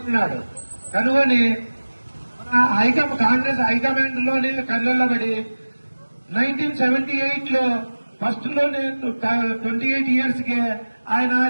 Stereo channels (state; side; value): inverted; both; correlation -1.00